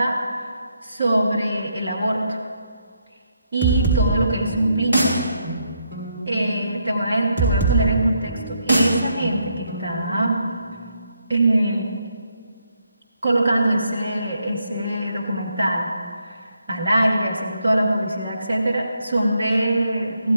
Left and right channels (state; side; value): inverted; both; correlation -0.77